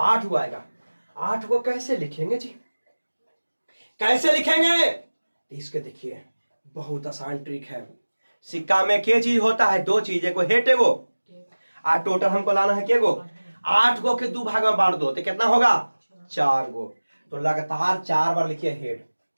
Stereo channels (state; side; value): inverted; both; correlation -1.00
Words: हुआ आएगा। 8 को कैसे लिखेंगे जी, कैसे लिखेंगे। इसके देखिए बहुत आसान ट्रिक है। सिक्का में क्या चीज होता है, 2 चीज, एगो हेड एगो, और टोटल हमको लाना है क्या गो 8 गो के 2 भाग में बांट दो तो कितना होगा 4 गो। तो लगातार 4 बार लिखिए हेड,